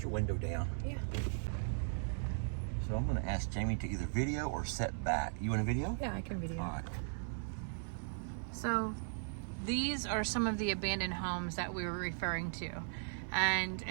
your window down? Yeah. So I'm going to ask Jamie to either video or set back. You want a video? Yeah, I can video. All right. So, these are some of the abandoned homes that we were referring to. And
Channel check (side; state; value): left; silent; digital silence